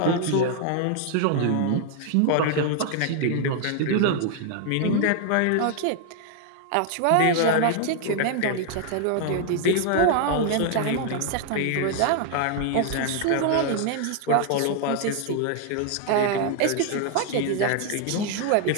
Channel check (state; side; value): different; both; correlation 0.00